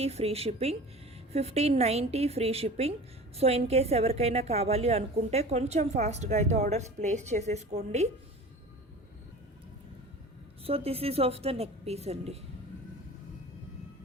free shipping. 1590 free shipping. So in case ఎవరికైనా కావాలి అనుకుంటే కొంచెం ఫాస్ట్గా అయితే ఆర్డర్స్ ప్లేస్ చేసేసుకోండి. So this is of the neck piece అండి.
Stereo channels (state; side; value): normal; both; correlation 0.38